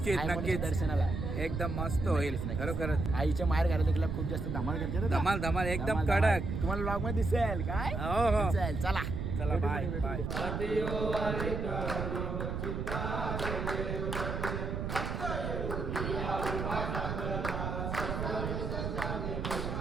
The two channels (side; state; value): right; noise; rumble, 3 dB below the sound